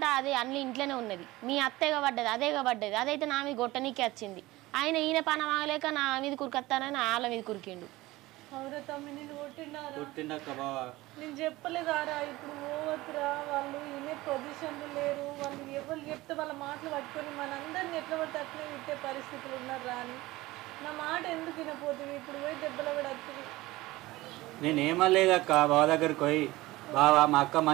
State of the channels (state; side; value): quieter; left; 19.1 dB